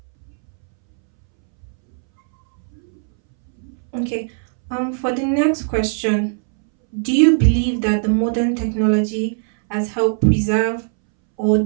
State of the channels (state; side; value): silent; left; 65 dB below the other